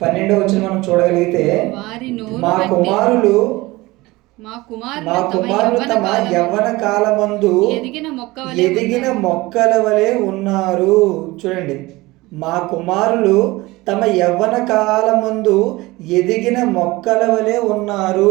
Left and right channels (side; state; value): left; quieter; 20.7 dB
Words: 12వ వచనం మనం చూడగలిగితే, మా కుమారులు తమ యవ్వన కాలమందు ఎదిగిన మొక్కల వలె ఉన్నారు. చూడండి, మా కుమారులు తమ యవ్వన కాలమందు ఎదిగిన మొక్కల వలె